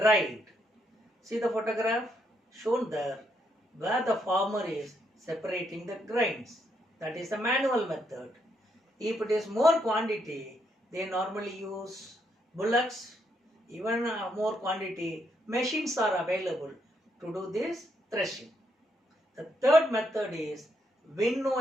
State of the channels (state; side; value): normal; both; correlation 0.76